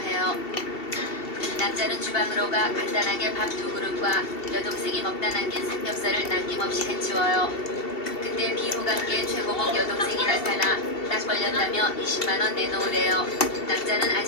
남자는 주방으로 가 간단하게 밥 2그릇과 여동생이 먹다 남긴 삼겹살을 남김없이 해치워요. 그때 비호감계의 최고봉 여동생이 나타나 딱 걸렸다며 20만원 내놓으래요. 남자는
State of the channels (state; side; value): late; right; 2.7 ms